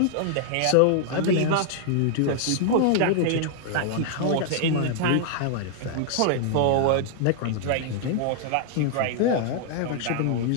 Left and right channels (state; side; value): different; both; correlation 0.00